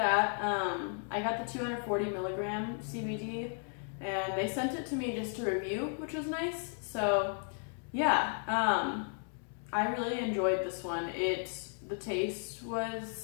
I got the 240 milligram CBD, and they sent it to me just to review, which was nice. So yeah, I really enjoyed this one. The taste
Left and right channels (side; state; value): right; silent; 55 dB below the other